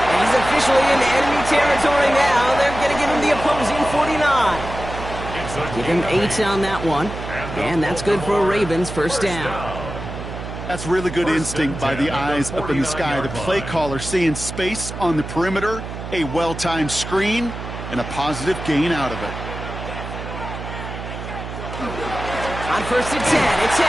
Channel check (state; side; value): noise; right; hum, 9 dB below the sound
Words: And he's officially in enemy territory now. They're going to give him the opposing 49. Give him 8 on that one. And that's good for a Ravens first down. That's really good instinct by the eyes up in the sky. The play caller seeing space on the perimeter, a well-timed screen, and a positive gain out of it. On 1st and 10, it's